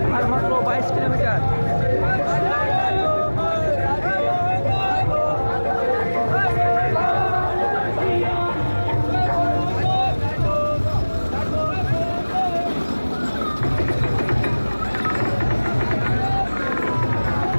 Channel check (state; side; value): inverted; both; correlation -1.00